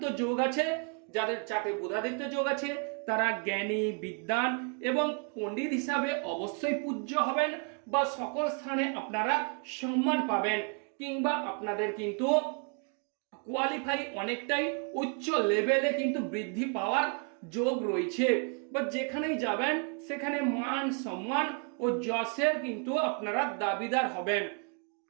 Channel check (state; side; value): quieter; left; 38.5 dB